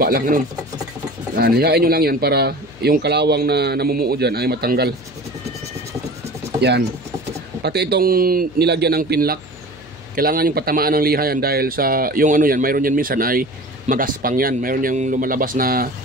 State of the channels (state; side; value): noise; left; hum, 22 dB below the sound